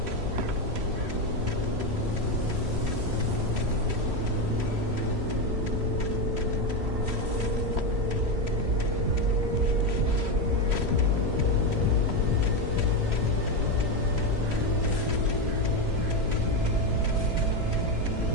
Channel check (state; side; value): late; left; 3.1 ms